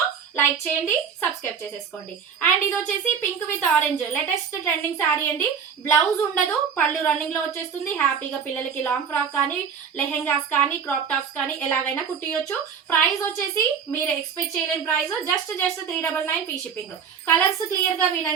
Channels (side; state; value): left; quieter; 6.9 dB